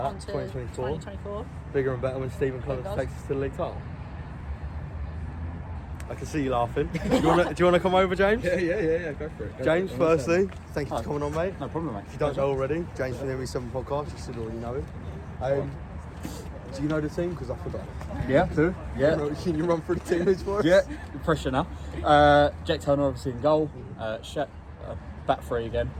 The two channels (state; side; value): identical; both; correlation 1.00